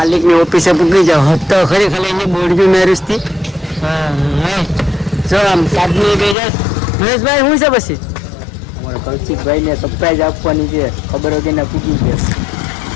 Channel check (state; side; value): drops out; right; at 6.4 s